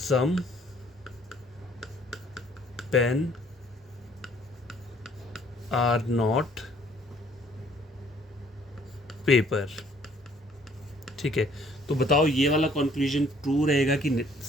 pen are not paper. ठीक है, तो बताओ ये वाला कंक्लूजन ट्रू रहेगा कि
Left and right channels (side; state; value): both; normal; correlation 0.60